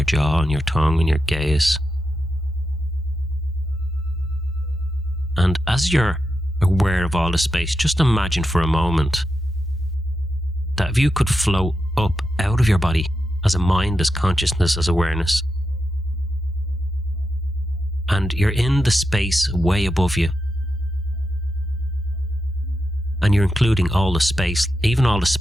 jaw and your tongue and your gaze. And as you're aware of all the space, just imagine for a moment that if you could float up out of your body as a mind, as consciousness, as awareness, and you're in the space way above you, and you're including all the space, even all the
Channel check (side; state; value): both; normal; correlation 0.87